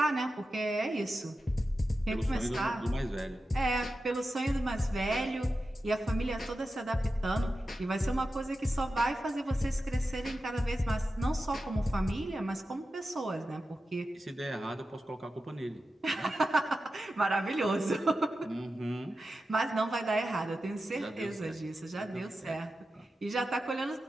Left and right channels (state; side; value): normal; both; correlation 0.92